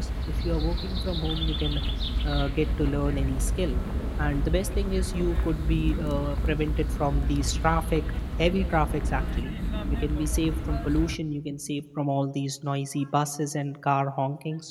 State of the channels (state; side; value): identical; both; correlation 1.00